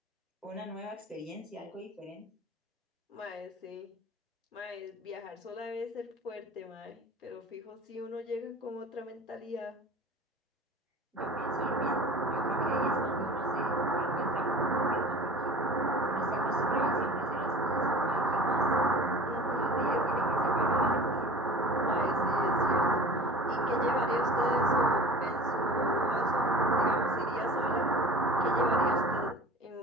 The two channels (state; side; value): normal; both; correlation 0.40